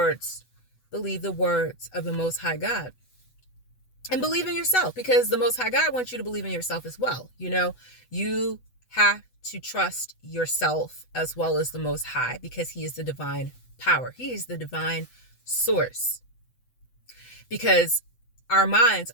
of the Most High God. And believe in yourself, because the Most High God wants you to believe in yourself as well. You have to trust yourself as well as the Most High, because He is the divine power. He is the divine source. Because our minds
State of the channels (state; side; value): late; right; 8.0 ms